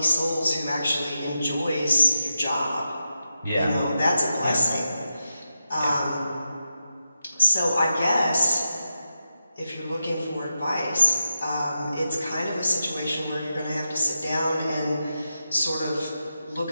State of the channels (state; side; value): inverted; both; correlation -0.87